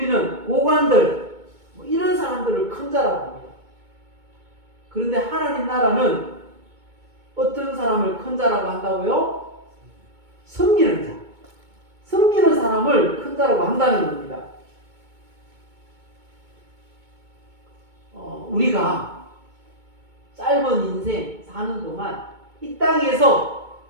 고관들, 이런 사람들을 큰 자라고 합니다. 그런데 하나님 나라는 어떤 사람을 큰 자라고 한다고요? 섬기는 자. 섬기는 사람을 큰 자라고 한다는 겁니다. 우리가 짧은 인생 사는 동안 이 땅에서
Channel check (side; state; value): left; late; 2.2 ms